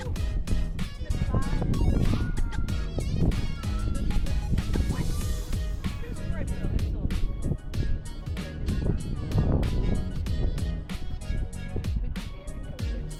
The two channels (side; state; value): both; identical; correlation 1.00